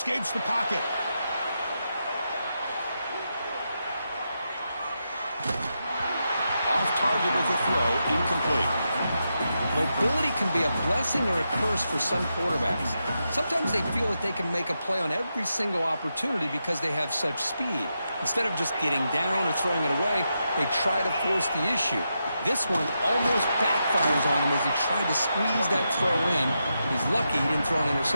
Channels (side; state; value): both; inverted; correlation -0.86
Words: the pocket. Off target with the throw, incomplete. Mobility can be a blessing or a curse for some quarterbacks. Sometimes they feel that they can make a play on every single opportunity because they have such speed. Instead of just getting down or throwing it away, they try to force the issue. This one almost backfires on him as he tried to squeeze that throw in. He's lucky he didn't throw an